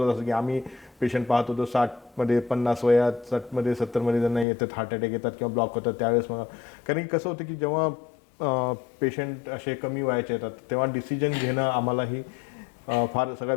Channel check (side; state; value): right; drops out; at 4.5 s